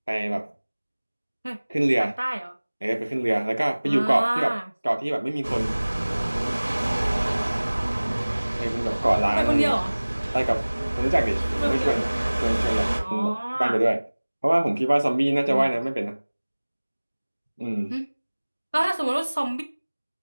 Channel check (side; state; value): both; inverted; correlation -1.00